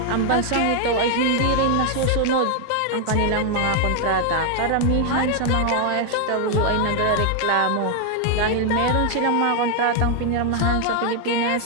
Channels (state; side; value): different; both; correlation 0.00